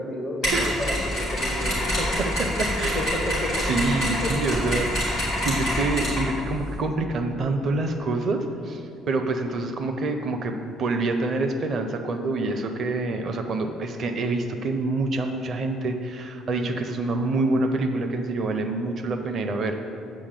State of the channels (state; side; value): normal; both; correlation 0.66